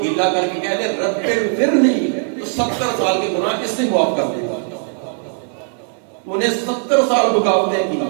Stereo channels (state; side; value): silent; left; 56 dB below the other